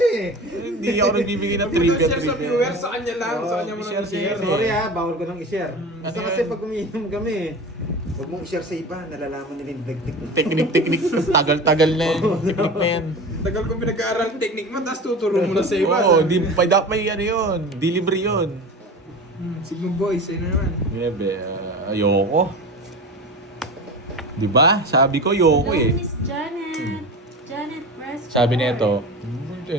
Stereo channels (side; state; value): both; normal; correlation 0.32